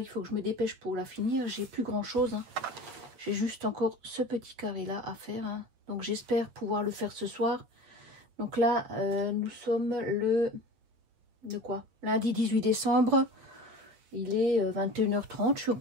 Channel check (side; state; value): left; late; 8.9 ms